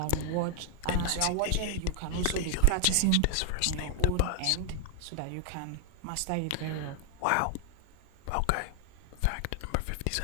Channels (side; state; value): both; different; correlation 0.00